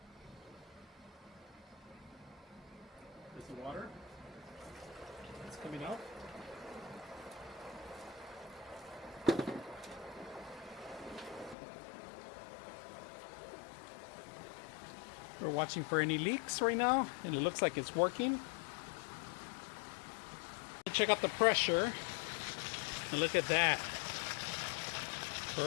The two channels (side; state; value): right; drops out; at 11.6 s